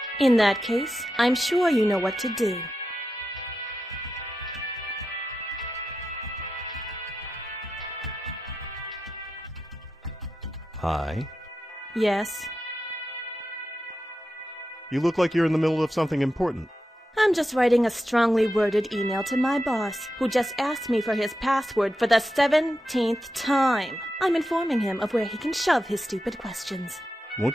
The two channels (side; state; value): both; normal; correlation 0.89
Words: In that case, I'm sure you know what to do. Hi. Yes? You look like you're in the middle of something important. I'm just writing a strongly worded email to my boss, who just asked me for his password for the 17th time. I'm informing him of where he can shove his stupid questions.